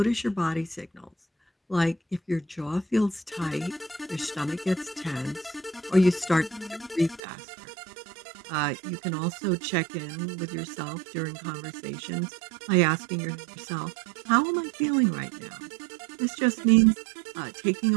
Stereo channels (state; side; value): drops out; left; at 7.2 s